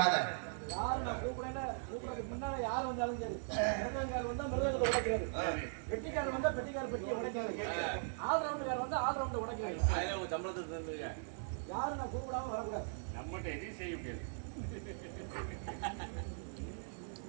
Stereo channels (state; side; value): silent; left; 51 dB below the other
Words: யாரு நான் கூப்பிடுறதுக்கு முன்னால யார் வந்தாலும் சரி, மிருதங்கார் வந்தா மிருதங்கத்தை உடைக்கிறது, பெட்டிக்காரர் வந்தா பெட்டிக்கார பெட்டியை உடைக்கிறது, ஆல்ரவுண்டுக்கார் வந்தா ஆல்ரவுண்டை உடைக்கிறது. சம்பளத்தை யாரு நான் கூப்பிடாம வரக்கூடாது. நம்மகிட்ட எதையும் செய்ய முடியாது.